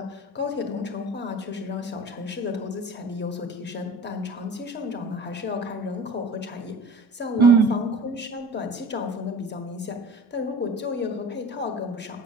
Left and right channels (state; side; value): normal; both; correlation 0.39